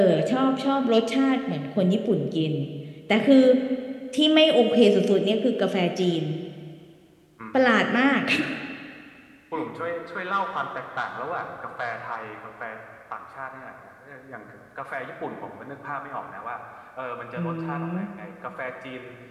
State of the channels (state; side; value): identical; both; correlation 1.00